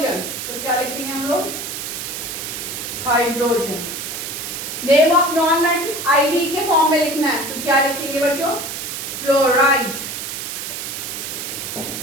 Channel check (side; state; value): right; noise; hiss, 6 dB below the sound